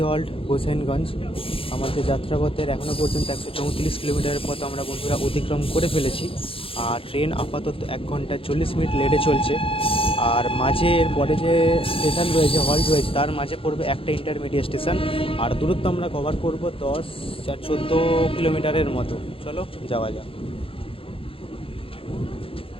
হল্ট হুসেনগঞ্জ। আমাদের যাত্রাপথের এখনও পর্যন্ত 134 কিলোমিটারের পথ আমরা বন্ধুরা অতিক্রম করে ফেলেছি। আর ট্রেন আপাতত 1 ঘন্টা 40 মিনিট লেটে চলছে। আর মাঝে এর পরে যে স্টেশন রয়েছে, হল্ট রয়েছে, তার মাঝে পড়বে একটা ইন্টারমিডিয়েট স্টেশন। আর দূরত্ব আমরা কভার করব 14 কিলোমিটারের মতো। চলো যাওয়া যাক।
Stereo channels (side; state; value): right; late; 0.27 ms